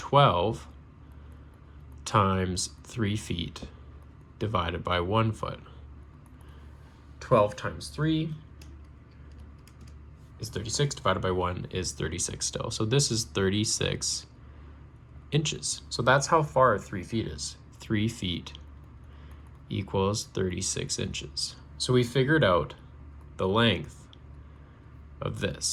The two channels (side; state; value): both; identical; correlation 1.00